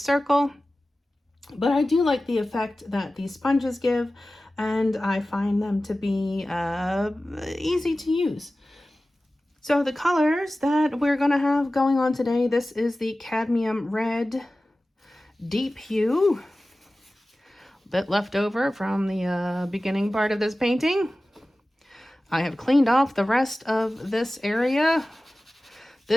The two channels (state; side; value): normal; both; correlation 0.96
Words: but I do like the effect that these sponges give, and I find them to be easy to use. So the colors that we're going to have going on today, this is the Cadmium Red Deep Hue, a bit left over from the beginning part of this painting. I have cleaned off the rest of this area.